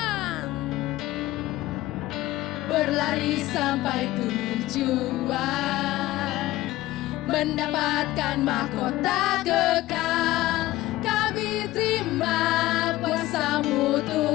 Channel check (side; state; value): right; quieter; 16.9 dB